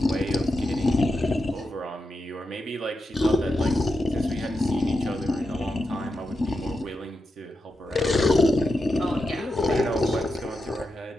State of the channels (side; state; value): both; normal; correlation 0.87